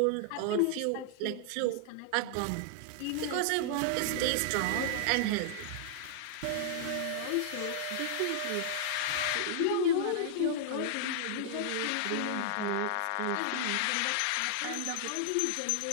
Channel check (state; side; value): different; both; correlation -0.01